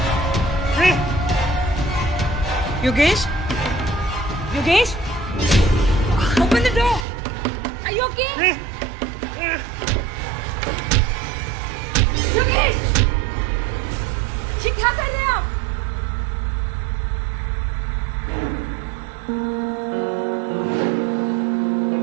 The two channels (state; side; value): drops out; left; at 7.1 s